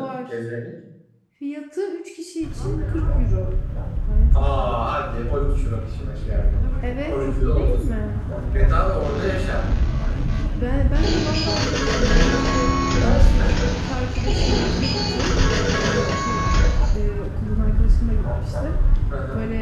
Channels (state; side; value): identical; both; correlation 1.00